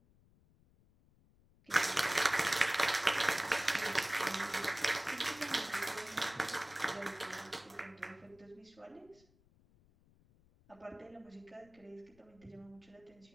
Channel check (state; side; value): noise; left; rumble, 30 dB below the sound